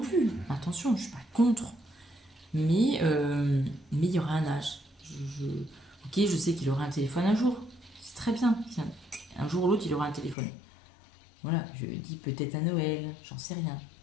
plus. Attention, je suis pas contre. Mais il y aura un âge. Ok, je sais qu'il aura un téléphone un jour. C'est très bien. Un jour ou l'autre, il aura un téléphone. Voilà, je dis peut-être à Noël, j'en sais rien.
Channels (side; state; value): right; drops out; at 10.4 s